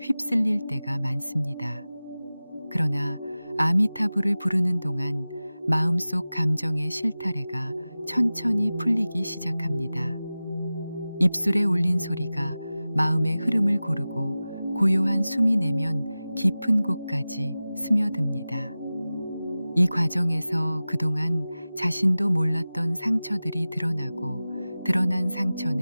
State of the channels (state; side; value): inverted; both; correlation -0.96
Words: 휩쓸릴 때가 많습니다. 그러나 아미타불을 부르는 동안 마음속 감정의 실타래가 천천히 풀리기 시작합니다. 입술에 올린 소리가 마음의 흐름을 고르고 고요한 숨이 내면 깊은 곳까지 스며듭니다. 이 과정에서 그동안 자신도 몰랐던 상처들이 드러나고 드러난